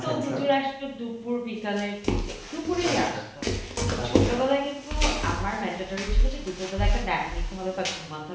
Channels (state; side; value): identical; both; correlation 1.00